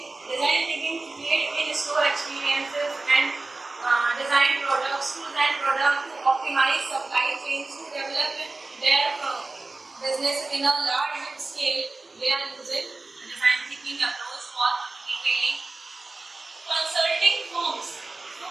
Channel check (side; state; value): left; quieter; 3.3 dB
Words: design thinking to create in-store experiences and design product to optimize supply chains, to develop their business in a large scale. They are using design thinking approach for retailing. Consulting firms.